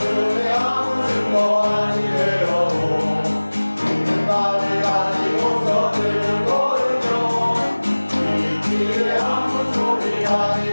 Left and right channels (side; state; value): both; inverted; correlation -1.00